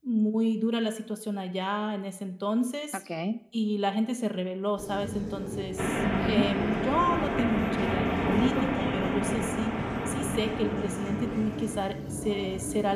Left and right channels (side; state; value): both; identical; correlation 1.00